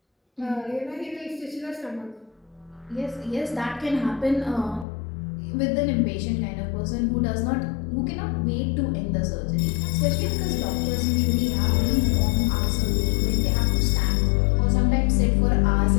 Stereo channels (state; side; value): drops out; right; at 4.9 s